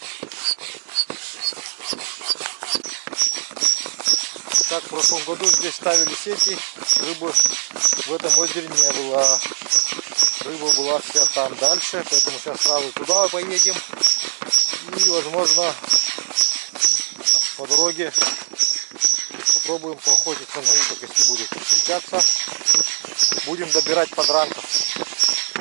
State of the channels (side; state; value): left; silent; 63 dB below the other